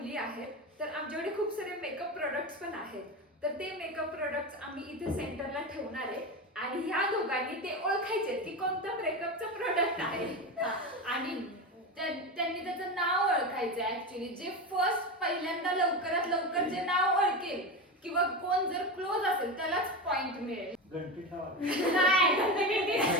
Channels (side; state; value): both; normal; correlation 0.20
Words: आहेत, तर आमच्याकडे खूप सारे मेकअप प्रोडक्ट्स पण आहेत. तर ते मेकअप प्रोडक्ट्स आम्ही इथे सेंटरला ठेवणार आहे आणि ह्या दोघांनी ते ओळखायचे की कोणतं मेकअपचं प्रोडक्ट आहे. आणि त्यांनी त्याचं नाव ओळखायचं ऍक्च्युली. जे फर्स्ट पहिल्यांदा लवकरात लवकर जे नाव ओळखेल किंवा कोण जर क्लोज असेल त्यालाच पॉइंट मिळेल. घंटी ठेवा. नाही